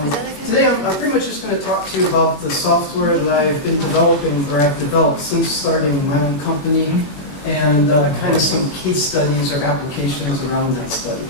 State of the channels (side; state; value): right; late; 21 ms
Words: today I'm pretty much just going to talk to you about the software that I've been developing, or I've developed since starting my own company, and kind of some case studies or applications around that